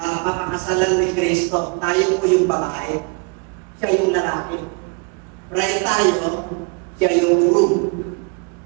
ni Kristo. Tayo po yung babae. Siya yung lalaki. Bride tayo, siya yung groom.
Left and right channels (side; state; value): left; quieter; 33.7 dB